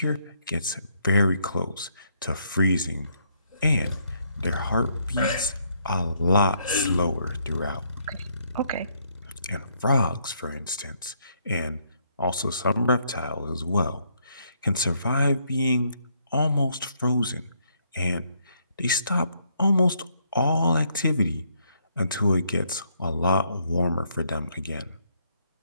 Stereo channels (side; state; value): both; inverted; correlation -0.72